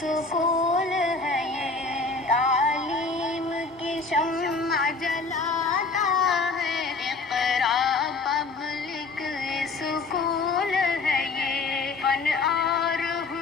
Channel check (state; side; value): quieter; right; 3.9 dB